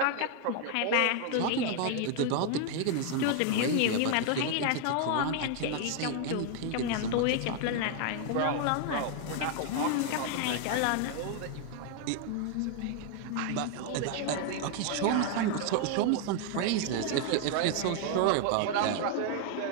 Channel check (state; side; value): different; both; correlation 0.00